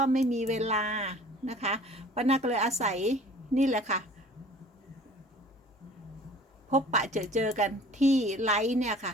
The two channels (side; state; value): both; normal; correlation 0.48